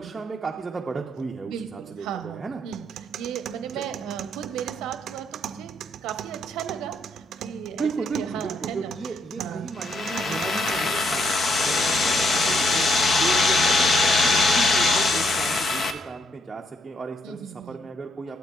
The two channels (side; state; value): both; normal; correlation 0.73